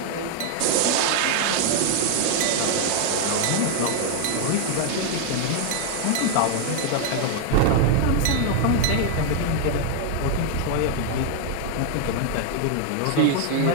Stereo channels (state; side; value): different; both; correlation 0.00